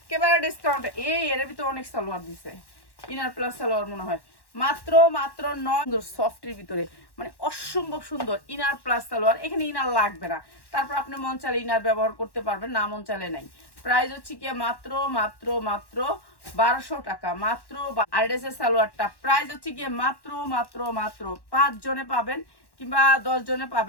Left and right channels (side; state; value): right; late; 1.1 ms